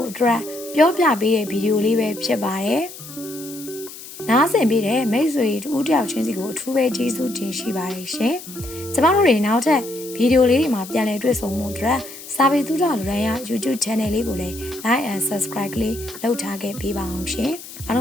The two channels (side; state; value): left; noise; hiss, 14 dB below the sound